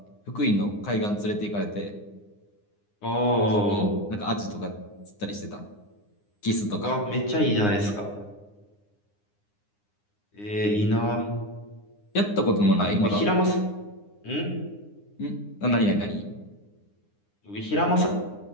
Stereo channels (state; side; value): late; right; 9.7 ms